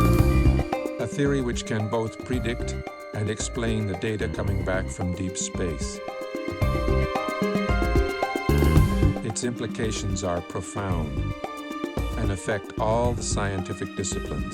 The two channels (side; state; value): both; identical; correlation 1.00